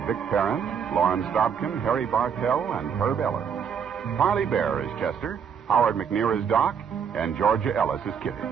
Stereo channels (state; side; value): quieter; left; 7.3 dB